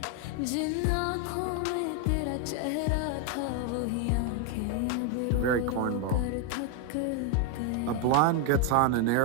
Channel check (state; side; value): different; both; correlation 0.01